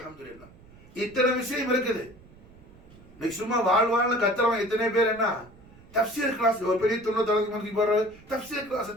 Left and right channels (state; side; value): noise; right; rumble, 23 dB below the sound